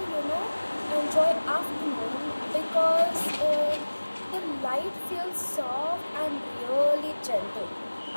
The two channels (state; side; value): inverted; both; correlation -1.00